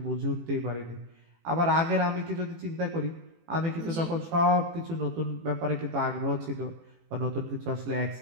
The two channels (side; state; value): left; late; 18 ms